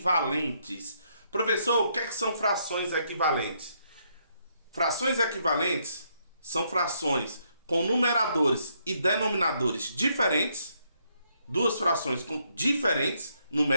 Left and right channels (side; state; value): both; inverted; correlation -0.74